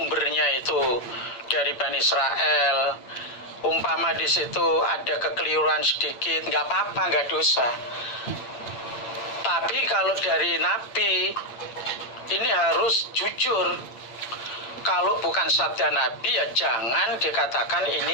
itu dari Bani Israel, umpama di situ ada kekeliruan sedikit, nggak apa-apa, nggak dosa. Tapi kalau dari Nabi, ini harus jujur. Kalau bukan sabda Nabi, ya jangan dikatakan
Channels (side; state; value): right; late; 8.5 ms